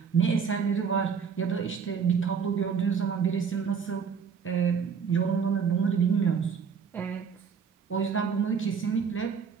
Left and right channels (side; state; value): left; quieter; 6.4 dB